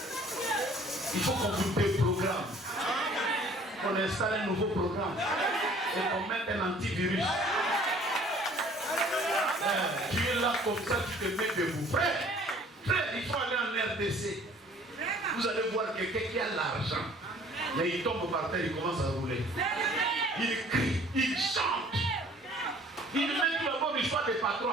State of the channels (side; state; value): both; normal; correlation 0.54